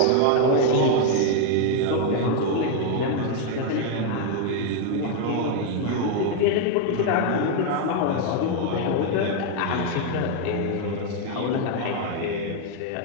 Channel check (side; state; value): both; different; correlation 0.00